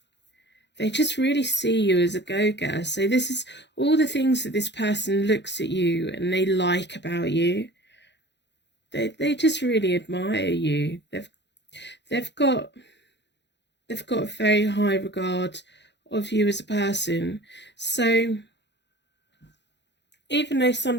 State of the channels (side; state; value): right; late; 0.51 ms